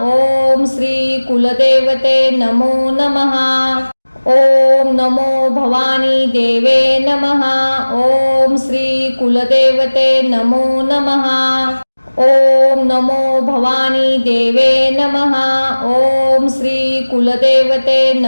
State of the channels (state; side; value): inverted; both; correlation -1.00